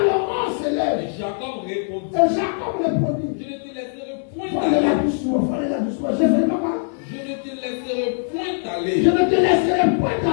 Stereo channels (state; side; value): silent; right; 61 dB below the other